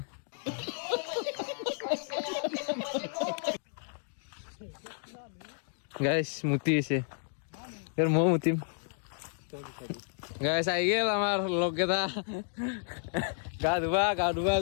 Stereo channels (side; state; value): right; silent; digital silence